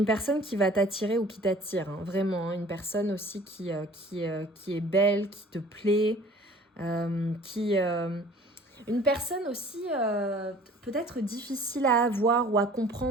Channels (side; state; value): both; normal; correlation 0.49